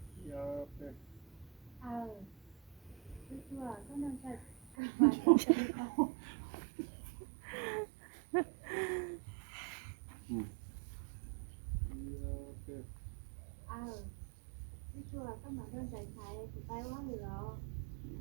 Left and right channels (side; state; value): left; drops out; at 4.8 s